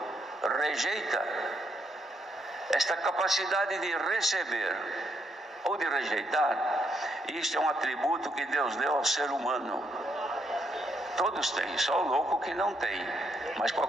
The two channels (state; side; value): normal; both; correlation 0.76